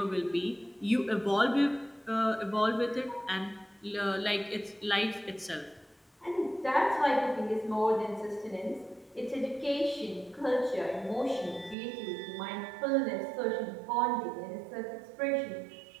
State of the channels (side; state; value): left; drops out; at 11.8 s